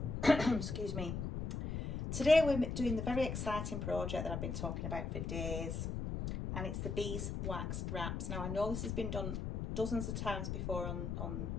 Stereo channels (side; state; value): left; noise; rumble, 3 dB below the sound